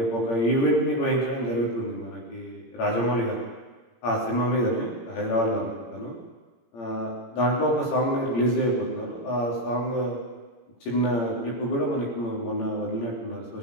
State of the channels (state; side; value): late; right; 17 ms